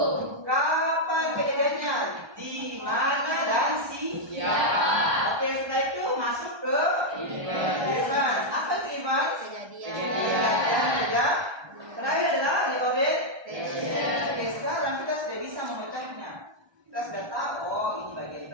Kapan kejadiannya? Di mana? Kita sudah tahu, oh ini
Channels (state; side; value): late; left; 1.2 ms